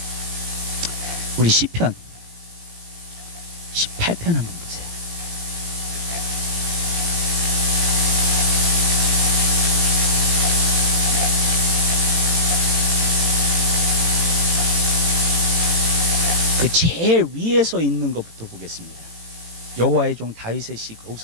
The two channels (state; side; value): late; left; 18 ms